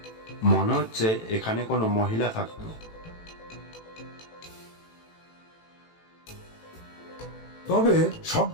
মনে হচ্ছে এখানে কোনো মহিলা থাকতো। তবে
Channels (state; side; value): late; right; 18 ms